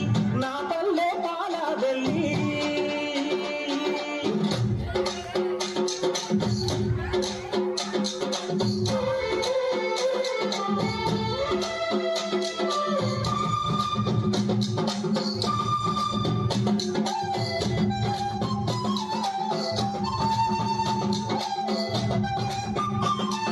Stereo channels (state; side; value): identical; both; correlation 1.00